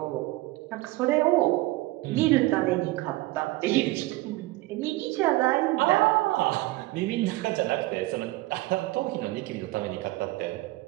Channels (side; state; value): left; quieter; 19.4 dB